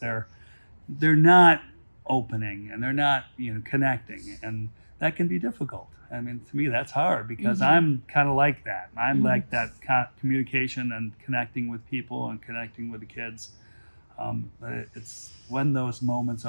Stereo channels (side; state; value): both; inverted; correlation -1.00